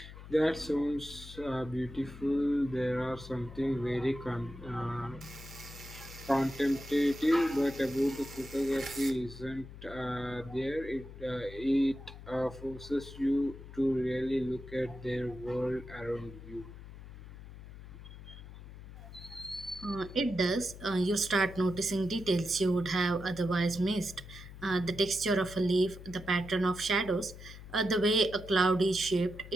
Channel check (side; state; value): left; noise; hum, 15 dB below the sound